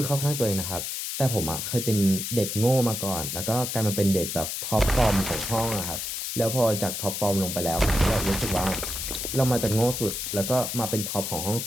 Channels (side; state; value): left; noise; hiss, 4 dB below the sound